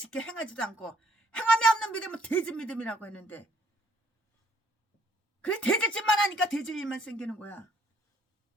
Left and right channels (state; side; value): normal; both; correlation 0.66